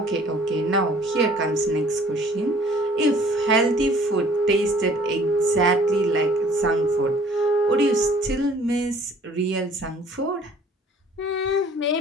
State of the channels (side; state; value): both; normal; correlation 0.54